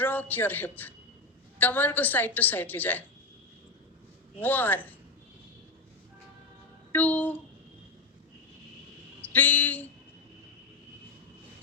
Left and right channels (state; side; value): quieter; right; 3.6 dB